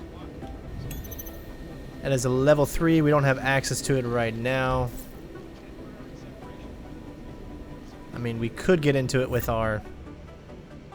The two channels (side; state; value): both; identical; correlation 1.00